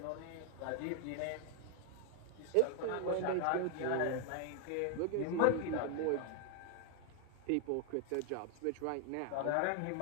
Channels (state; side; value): different; both; correlation 0.01